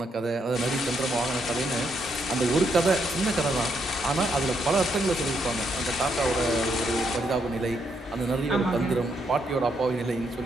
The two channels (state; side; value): normal; both; correlation 0.76